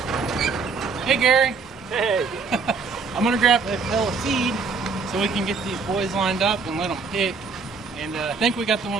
Hey, Gary. Hey. I'm gonna grab a pail of feed so we can get these boys lined up and let them pick. And I think we got the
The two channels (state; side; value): quieter; left; 4.8 dB